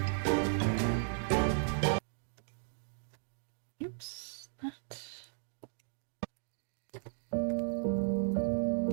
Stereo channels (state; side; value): silent; left; digital silence